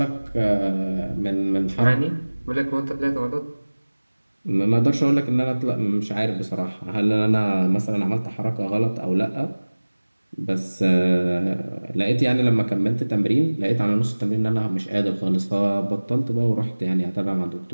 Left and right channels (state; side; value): inverted; both; correlation -1.00